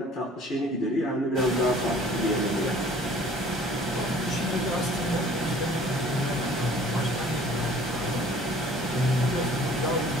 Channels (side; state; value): both; normal; correlation 0.51